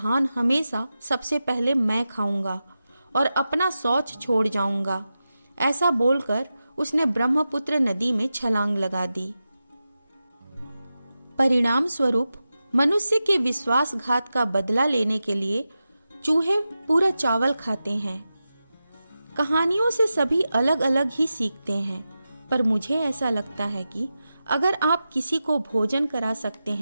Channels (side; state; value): both; inverted; correlation -0.92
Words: हमेशा सबसे पहले मैं खाऊंगा और अपना शौच छोड़ जाऊंगा। ऐसा बोलकर उसने ब्रह्मपुत्र नदी में छलांग लगा दी। परिणाम स्वरूप मनुष्य के विश्वासघात का बदला लेने के लिए चूहे पूरा चावल खाते हैं। कहानियों से सभी अलग अलग ही सीखते हैं, पर मुझे ऐसा लगता है कि अगर आप किसी को भोजन करा सकते